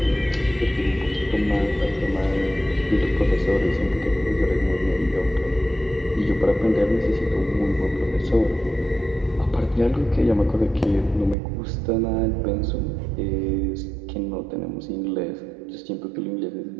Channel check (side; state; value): left; drops out; at 11.4 s